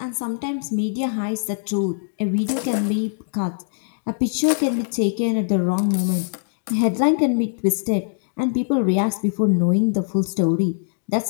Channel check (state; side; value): silent; right; digital silence